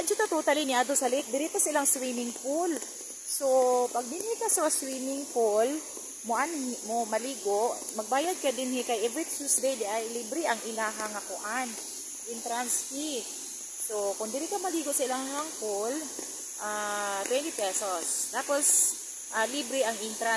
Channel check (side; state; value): both; identical; correlation 1.00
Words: dito totally ni ato sa lake, diri pa silang swimming pool. So pag dinhi ka sa swimming pool, mo maligo, magbayad ka dinhi kay every Tuesday di ay libre ang ilahang nga kuan, entrance fee. So kung diri ka maligo sa ilahang pool, 20 pesos. Tapos libre ang